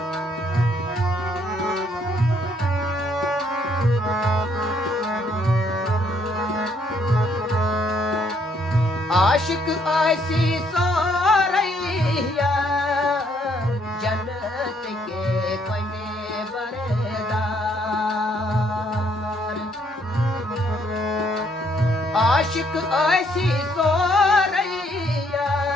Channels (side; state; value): both; normal; correlation 0.68